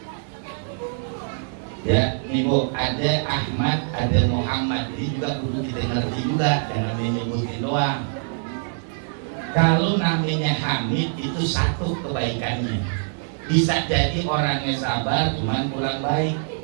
Ya, ibu, ada Ahmad, ada Muhammad. Ini juga perlu kita ngerti juga, jangan menyebutin doang. Kalau namanya Hamid itu satu kebaikannya. Bisa jadi orangnya sabar, cuman kurang baik.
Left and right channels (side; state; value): left; silent; 63 dB below the other